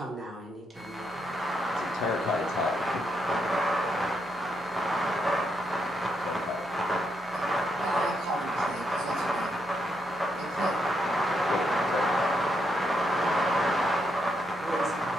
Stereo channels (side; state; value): both; normal; correlation 0.79